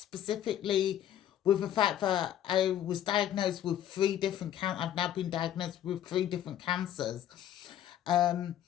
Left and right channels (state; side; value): quieter; right; 11.0 dB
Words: with the fact that I was diagnosed with I've now been diagnosed with 3 different cancers. Um,